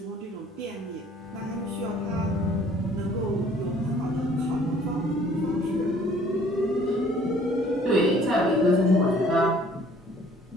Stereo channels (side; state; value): both; normal; correlation 0.56